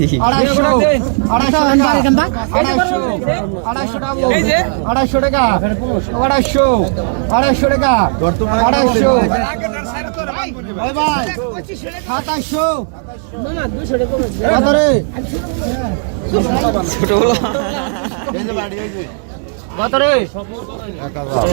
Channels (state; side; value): silent; left; digital silence